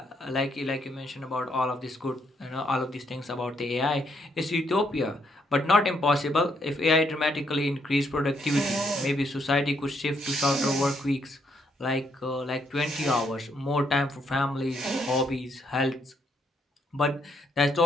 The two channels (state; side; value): normal; both; correlation 0.74